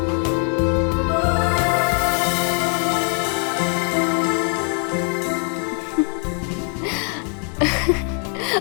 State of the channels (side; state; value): right; quieter; 37.6 dB